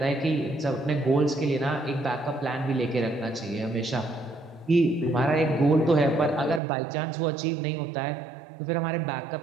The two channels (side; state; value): left; drops out; at 6.6 s